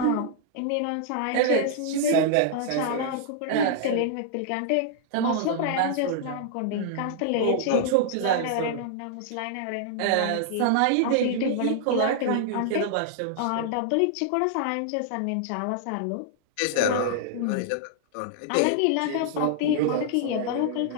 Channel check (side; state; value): both; different; correlation -0.01